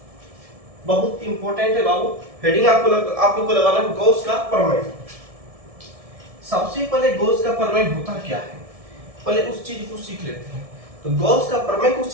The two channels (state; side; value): late; left; 1.7 ms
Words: बहुत इंपॉर्टेंट है बाबू, हेडिंग आप लोग को लगाना है गॉस का प्रमेय। सबसे पहले गॉस का प्रमेय होता क्या है, पहले उस चीज को सीख लेते हैं। तो गॉस का प्रमेय को